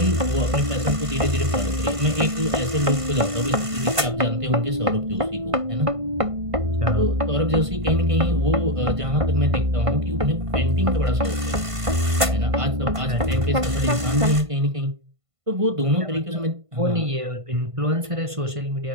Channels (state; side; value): late; left; 1.5 ms